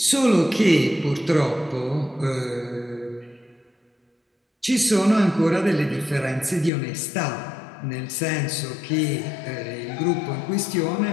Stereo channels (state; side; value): drops out; right; at 6.7 s